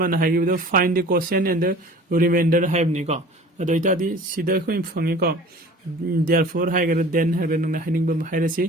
हाइगिबो find the quotient and the remainder हाइबनि को अदो इतादि सिदा खोइ फंगे को therefore हाइगर देन हाइगर नंग हाइनिंग बम हाइरसि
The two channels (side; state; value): both; normal; correlation 0.44